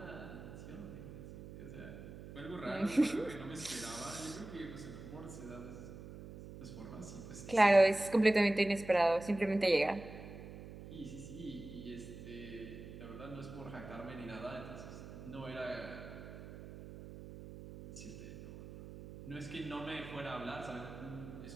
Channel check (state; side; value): noise; right; hum, 13 dB below the sound